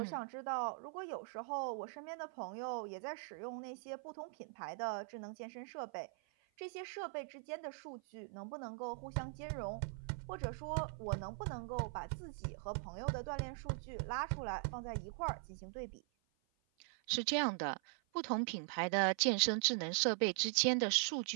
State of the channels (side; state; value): left; silent; 50 dB below the other